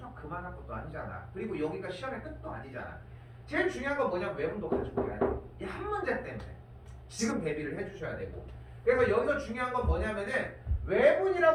그만할 것도 아니잖아. 그리고 여기가 시험의 끝도 아니잖아. 제일 중요한 건 뭐냐면 외분도 가지고 가야 돼. 이 한 문제 때문에 지금 대비를 해주셔야 되고. 그래서 여기서 중요한 건 뭐냐면은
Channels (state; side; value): identical; both; correlation 1.00